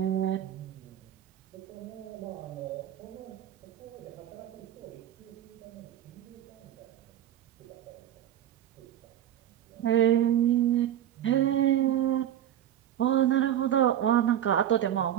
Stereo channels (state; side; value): quieter; left; 11.0 dB